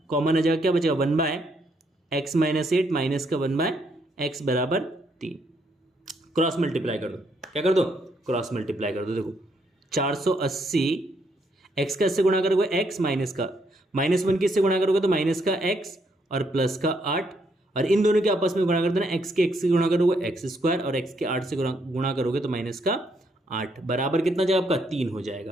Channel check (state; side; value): normal; both; correlation 0.73